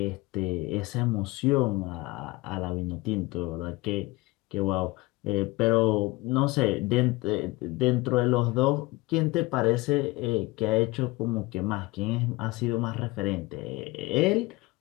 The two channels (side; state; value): right; quieter; 21.7 dB